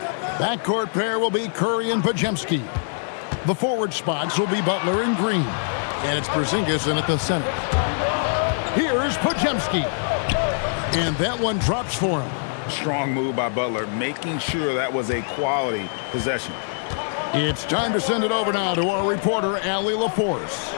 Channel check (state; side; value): silent; right; digital silence